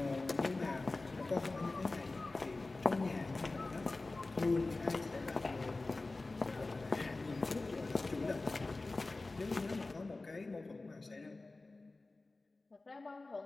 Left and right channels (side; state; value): right; quieter; 3.3 dB